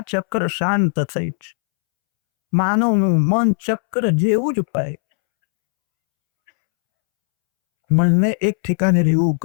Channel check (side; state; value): right; silent; 68 dB below the other